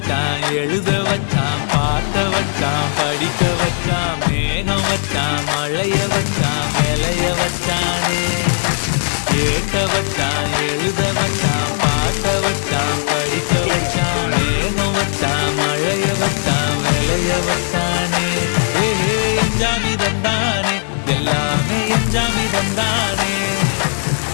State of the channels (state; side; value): silent; right; digital silence